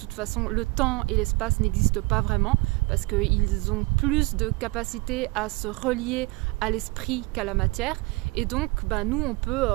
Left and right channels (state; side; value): quieter; left; 25.2 dB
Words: façon le temps et l'espace n'existent pas vraiment, parce qu'ils ont plus de capacité à se relier à l'esprit qu'à la matière. Et donc nous on